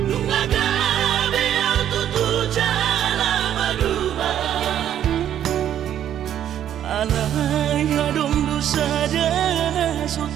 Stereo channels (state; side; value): quieter; left; 10.5 dB